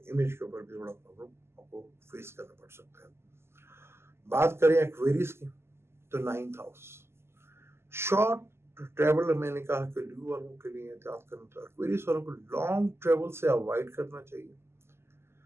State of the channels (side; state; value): left; late; 0.12 ms